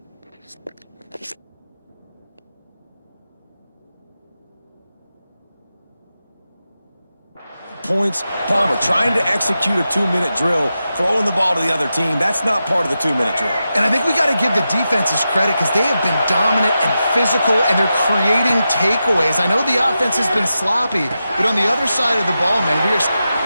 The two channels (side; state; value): both; inverted; correlation -0.90